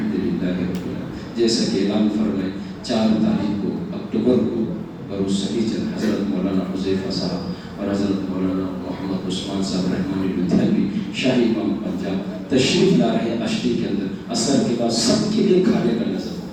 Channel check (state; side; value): identical; both; correlation 1.00